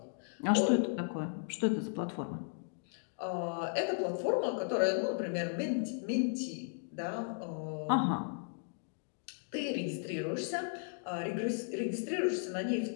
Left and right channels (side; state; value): right; silent; digital silence